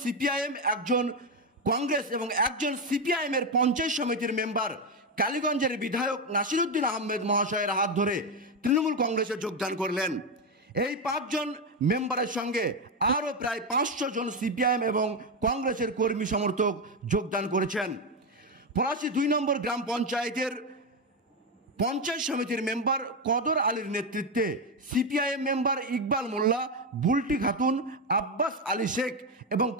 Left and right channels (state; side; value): normal; both; correlation 0.10